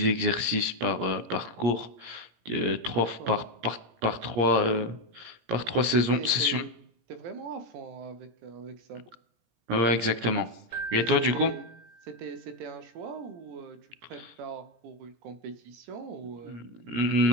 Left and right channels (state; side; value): late; left; 17 ms